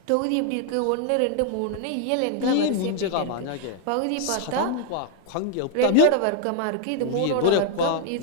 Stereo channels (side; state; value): both; different; correlation 0.00